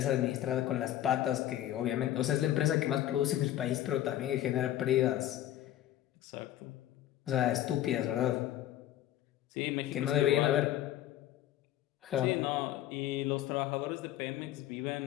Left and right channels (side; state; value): right; quieter; 12.9 dB